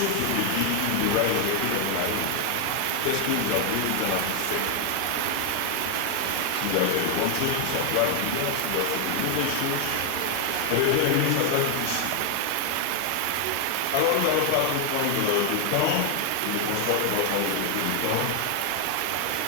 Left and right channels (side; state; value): both; different; correlation 0.00